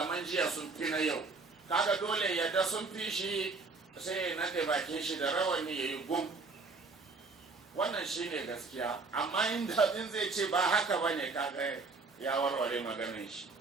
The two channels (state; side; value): quieter; left; 4.0 dB